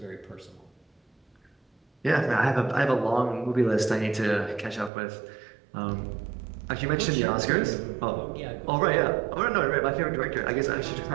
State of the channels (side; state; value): left; drops out; at 4.9 s